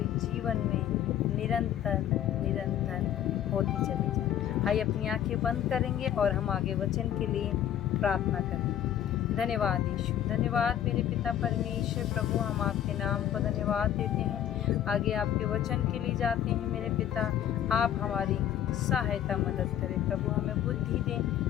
जीवन में निरंतर निरंतर होती चली जाए। आइए अपनी आंखें बंद करेंगे और हम आगे वचन के लिए प्रार्थना करेंगे। धन्यवाद यीशु, धन्यवाद मेरे पिता परमेश्वर। प्रभु हम आपके नाम को धन्यवाद देते हैं, आगे आपके वचन के लिए जाते हैं। मेरे पिता आप हमारी सहायता मदद करें प्रभु, हमें बुद्धि दें,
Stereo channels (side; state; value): right; quieter; 10.7 dB